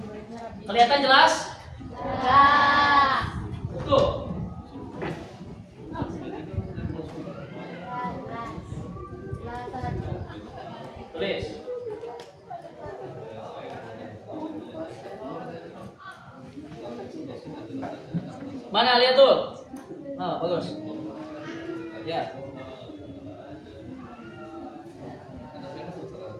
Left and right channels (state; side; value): identical; both; correlation 1.00